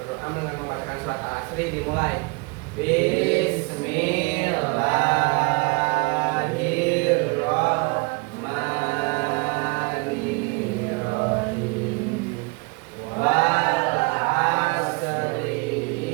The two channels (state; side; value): quieter; left; 29.5 dB